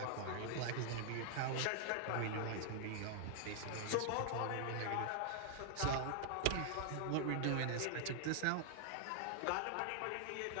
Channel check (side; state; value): both; different; correlation 0.00